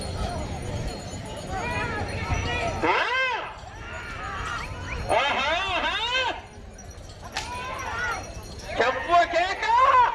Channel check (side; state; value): both; identical; correlation 1.00